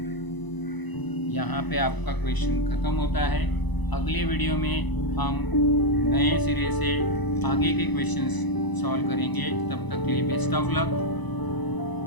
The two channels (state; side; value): late; right; 1.0 ms